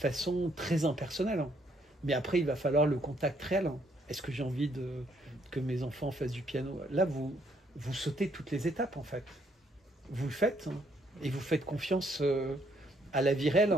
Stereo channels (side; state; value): both; normal; correlation 0.70